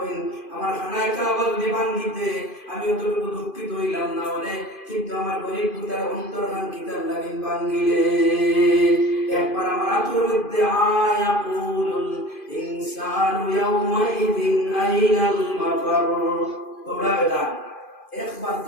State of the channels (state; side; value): late; right; 2.5 ms